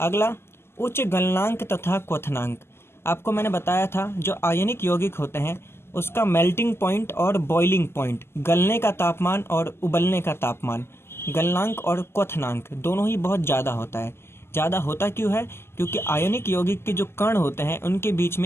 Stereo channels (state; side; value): late; right; 0.12 ms